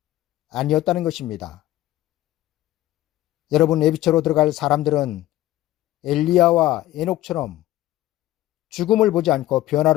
아니었다는 것입니다. 여러분, 예비처로 들어갈 사람들은 엘리야와 에녹처럼 죽음을 보지 않고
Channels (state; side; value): quieter; right; 15.2 dB